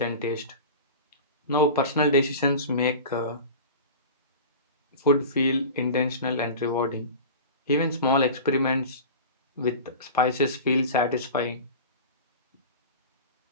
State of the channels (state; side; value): inverted; both; correlation -0.33